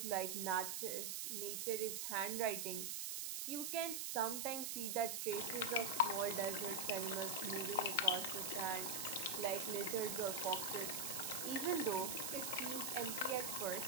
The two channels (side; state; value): right; noise; hiss, 2 dB below the sound